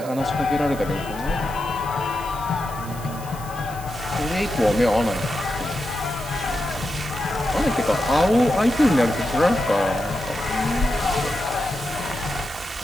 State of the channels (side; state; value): right; noise; hiss, 16 dB below the sound